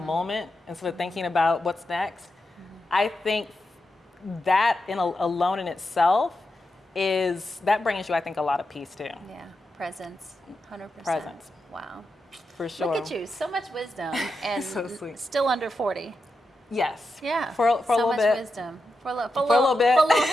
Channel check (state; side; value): normal; both; correlation 0.88